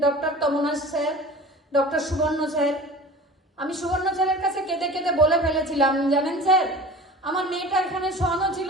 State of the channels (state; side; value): normal; both; correlation 0.39